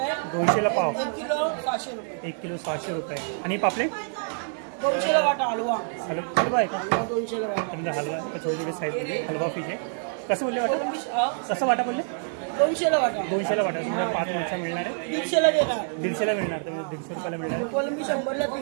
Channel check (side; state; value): left; silent; 61 dB below the other